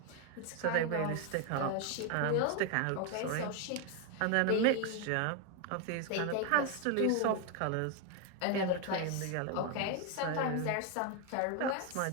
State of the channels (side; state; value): both; different; correlation 0.01